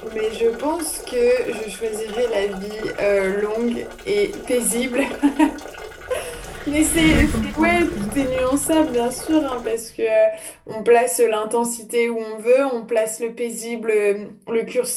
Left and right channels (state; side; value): identical; both; correlation 1.00